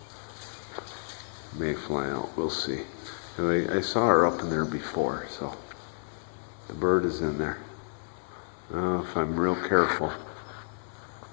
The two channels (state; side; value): silent; right; digital silence